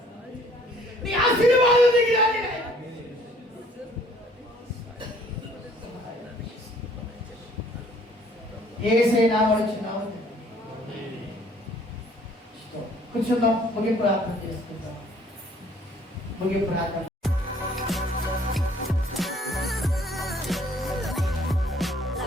నీ ఆశీర్వాదం దిగిరాని రాజా. యేసయ్య నామములో చిన్నాము కూర్చుందాం, ముగింపు ప్రార్థన చేసుకుందాం. ముగింపు ప్రార్థన.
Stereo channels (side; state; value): both; normal; correlation 0.58